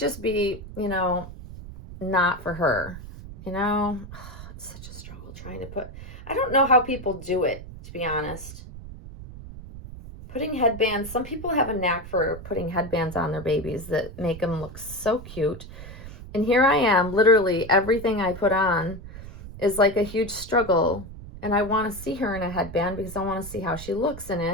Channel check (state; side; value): noise; right; rumble, 13 dB below the sound